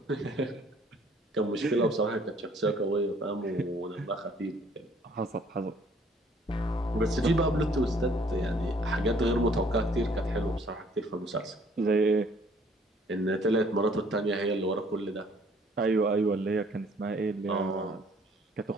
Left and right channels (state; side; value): normal; both; correlation 0.60